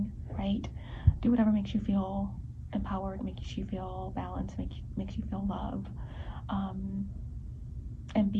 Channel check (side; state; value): both; identical; correlation 1.00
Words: write, do whatever makes you feel empowered, makes you feel balanced, makes you feel love, and